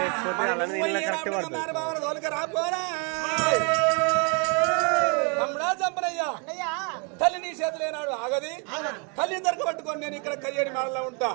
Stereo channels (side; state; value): left; quieter; 35.8 dB